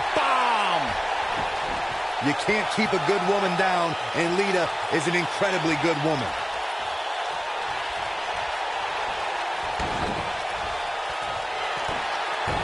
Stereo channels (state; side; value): identical; both; correlation 1.00